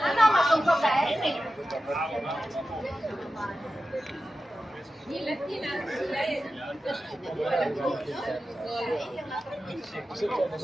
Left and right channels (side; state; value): both; normal; correlation 0.93